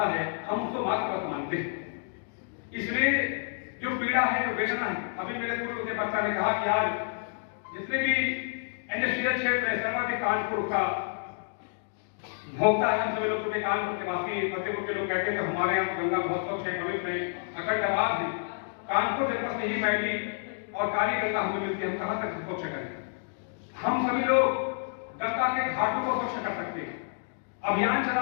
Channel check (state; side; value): silent; right; digital silence